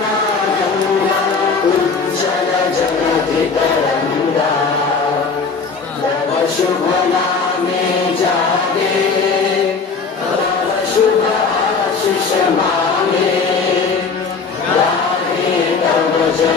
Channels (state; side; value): quieter; right; 4.9 dB